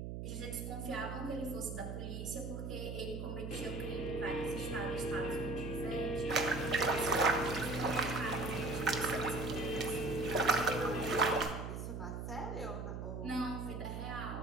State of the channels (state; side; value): noise; right; hum, 5 dB below the sound